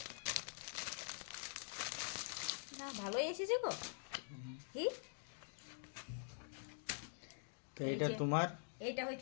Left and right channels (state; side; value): silent; right; digital silence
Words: না ভালোই এসেছে গো। কি তো এটা তোমার, এইটা